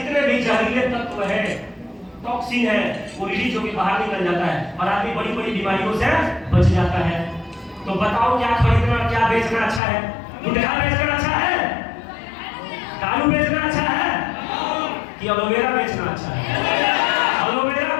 भी जहरीले तत्व है, टॉक्सिन है, वो रिलीज होकर बाहर निकल जाता है और आदमी बड़ी बड़ी बीमारियों से बच जाता है। तो बताओ, क्या खरीदना और क्या बेचना अच्छा है? गुटखा बेचना अच्छा है, दारू बेचना अच्छा है कि एलोवेरा बेचना अच्छा है? एलोवेरा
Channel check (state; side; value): drops out; right; at 9.8 s